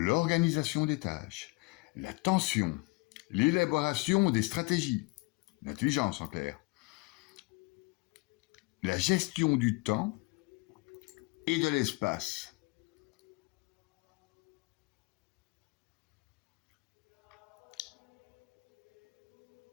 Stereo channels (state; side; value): quieter; right; 25.6 dB